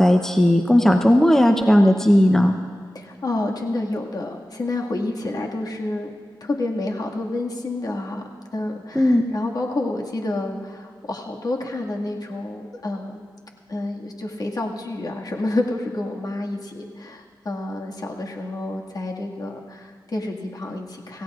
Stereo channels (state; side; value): normal; both; correlation 0.95